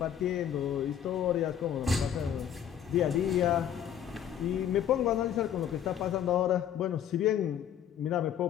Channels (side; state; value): right; quieter; 9.6 dB